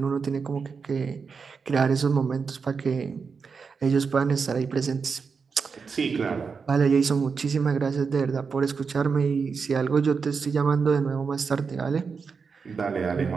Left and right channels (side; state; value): left; quieter; 5.4 dB